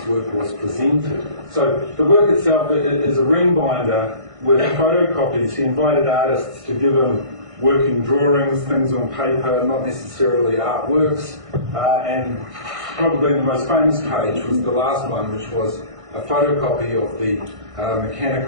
work was presented. So the work itself is a ring binder with photocopies. He invited artists to give him working drawings, things on paper, not necessarily artworks, and probably the most famous page was the last one, which was a photocopy of the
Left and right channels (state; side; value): late; left; 1.5 ms